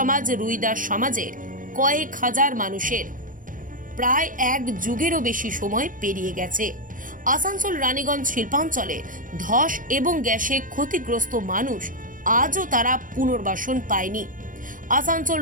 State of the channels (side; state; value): left; late; 0.39 ms